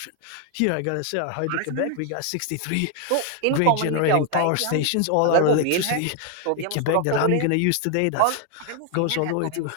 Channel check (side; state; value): both; different; correlation 0.00